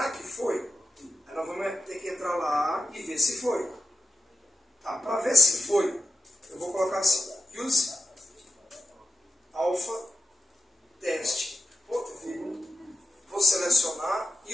que foi? Aí nós vamos ter que entrar lá e ver se foi. Tá? Para ver se foi, eu vou colocar assim, use alpha test. Vou selecionar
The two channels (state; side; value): normal; both; correlation 0.92